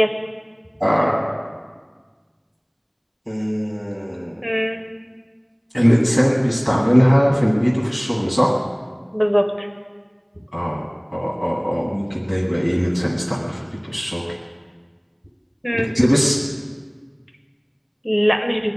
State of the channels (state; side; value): identical; both; correlation 1.00